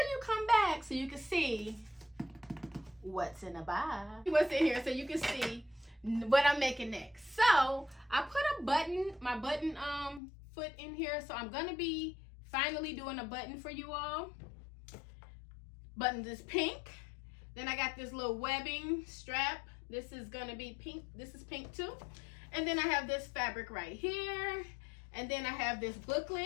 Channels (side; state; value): right; drops out; at 10.2 s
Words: come back so you can see what's in the box. What's in here so you can see what I'm making next. So I put my button foot in here. So I'm gonna be finally doing a button for you all. Button is pink. Then I got this little webbing strap. This is gonna be pink. This is pink too. And then I have this fabric right here. And then I have this